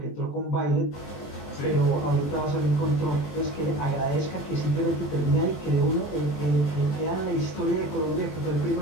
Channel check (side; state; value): right; late; 21 ms